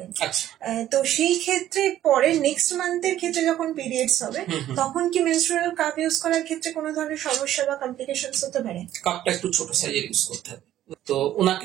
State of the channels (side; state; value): left; quieter; 12.6 dB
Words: আচ্ছা, তো সেই ক্ষেত্রে পরে নেক্সট মান্থের ক্ষেত্রে যখন পিরিয়ডস হবে তখন কি মেনস্ট্রুয়াল কাপ ইউজ করার ক্ষেত্রে কোনো ধরনের সমস্যা বা কমপ্লিকেশনস হতে পারে? কাপটা একটু ছোট সাইজের ইউজ করতে হবে। তো